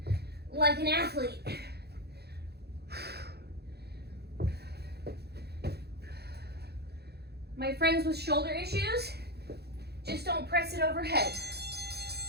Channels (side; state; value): left; late; 0.47 ms